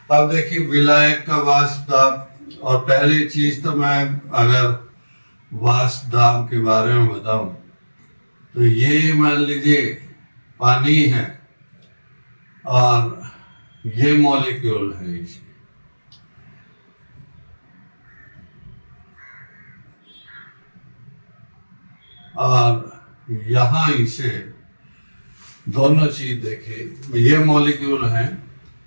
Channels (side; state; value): both; inverted; correlation -1.00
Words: अब देखिए विलायक का वाष्प दाब, और पहली चीज तो मैं अगर वाष्प दाब के बारे में बताऊं तो ये मान लीजिए पानी है और ये मॉलिक्यूल है इसमें, और यहां इसे दोनों चीज देखिए, ये मॉलिक्यूल है